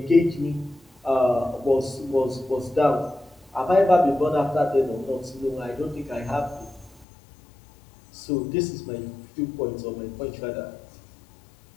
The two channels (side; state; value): right; drops out; at 7.1 s